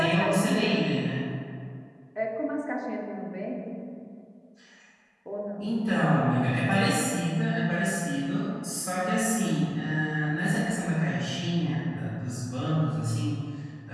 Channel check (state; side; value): identical; both; correlation 1.00